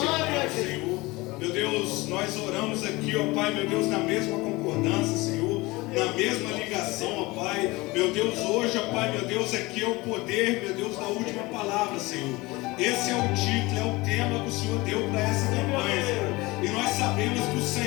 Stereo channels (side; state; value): right; quieter; 22.1 dB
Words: e eterno Senhor, meu Deus, nós oramos aqui, ó Pai, meu Deus, na mesma concordância, Senhor, na mesma ligação, ó Pai, meu Deus, hoje, ó Pai, meu Deus, aqui é o poder, meu Deus, da última palavra, Senhor. Esse é o título, é o tema que o Senhor deu para essa campanha, Senhor. E nós sabemos que o